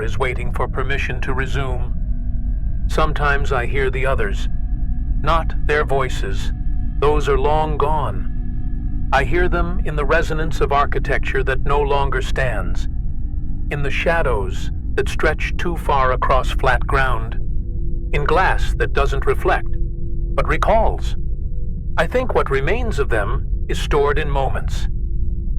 is waiting for permission to resume. Sometimes I hear the others, not their voices. Those are long gone. I hear them in the resonance of architecture that no longer stands, in the shadows that stretch too far across flat ground, in glass that doesn't reflect, but recalls. I think what remains of them is stored in moments,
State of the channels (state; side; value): identical; both; correlation 1.00